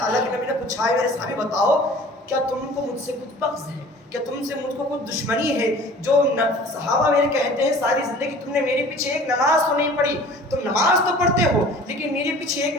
اللہ کے نبی نے پوچھا ہے میرے صحابی بتاؤ کیا تم کو مجھ سے کچھ بغض ہے, کیا تم سے مجھ کو کچھ دشمنی ہے؟ جو صحابہ میرے کہتے ہیں ساری زندگی تم نے میرے پیچھے ایک نماز تو نہیں پڑھی, تم نماز تو پڑھتے ہو لیکن میرے پیچھے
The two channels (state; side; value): normal; both; correlation 0.46